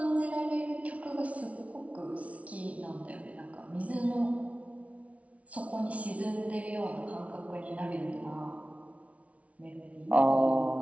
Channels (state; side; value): late; left; 0.065 ms